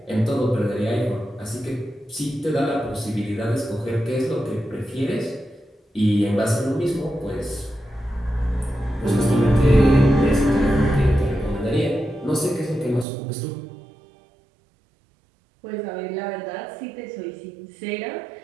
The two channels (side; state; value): left; drops out; at 13.1 s